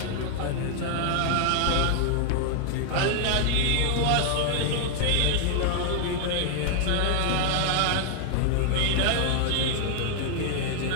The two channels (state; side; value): different; both; correlation 0.00